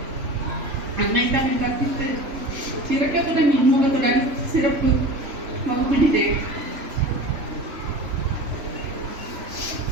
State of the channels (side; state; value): left; late; 3.4 ms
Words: அன்னை தமிழ் கற்பித்து இரக்கத்துடன் இன்முகத்துடன் சிறப்பு வகுப்பிடித்தேன்.